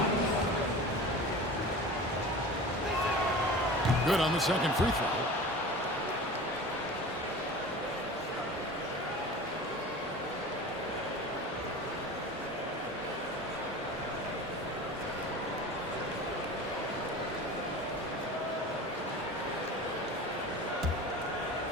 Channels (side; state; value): both; normal; correlation 0.36